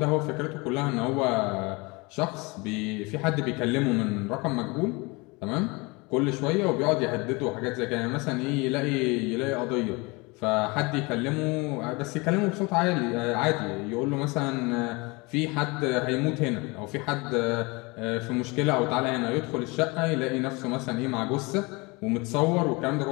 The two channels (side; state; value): right; quieter; 26.4 dB